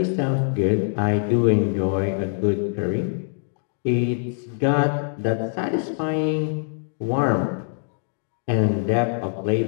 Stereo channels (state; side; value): silent; right; 63 dB below the other